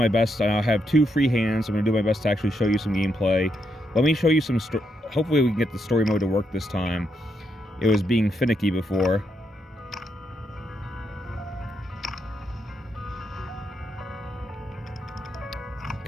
best. I have 2 free hands. I'm going to do my best to actually show you some gameplay. Let me show you some... Hopefully we can get the story mode to work this time. It was being finicky before.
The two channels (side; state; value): both; normal; correlation 0.80